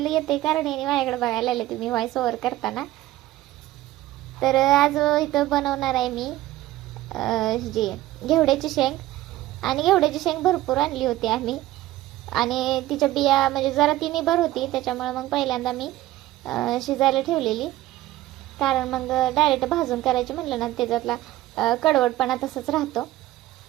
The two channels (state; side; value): quieter; left; 15.8 dB